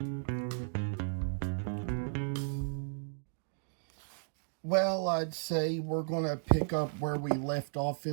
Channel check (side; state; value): left; silent; digital silence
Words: Well, I'd say we're going to pick up where we left off